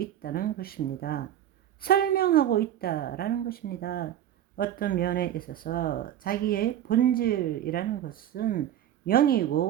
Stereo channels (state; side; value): quieter; left; 11.3 dB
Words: 것입니다. 설명하고 있다라는 것입니다. 어떤 면에 있어서 자기의 본질이라는 것은